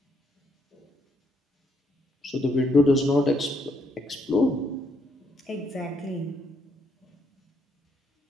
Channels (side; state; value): both; normal; correlation 0.73